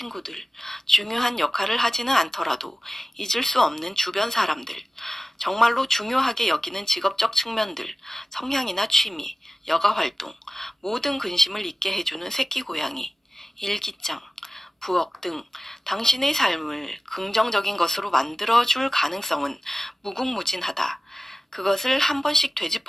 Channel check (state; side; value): normal; both; correlation 0.96